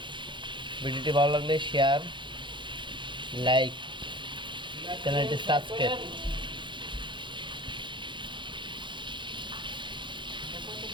ভিডিওটি ভালো লাগলে শেয়ার, লাইক, চ্যানেলটি সাবস্ক্রাইব।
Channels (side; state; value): left; late; 0.23 ms